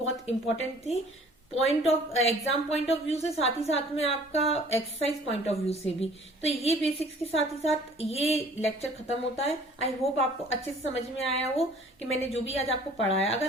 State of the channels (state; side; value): normal; both; correlation 0.52